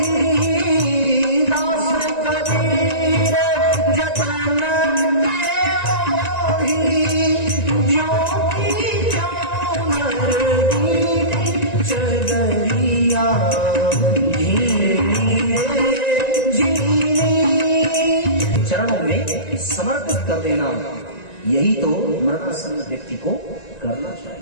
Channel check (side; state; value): right; late; 1.9 ms